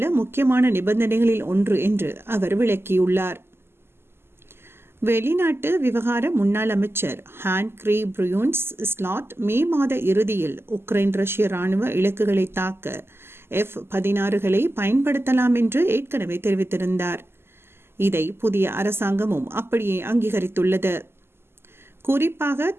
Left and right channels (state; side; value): late; left; 0.12 ms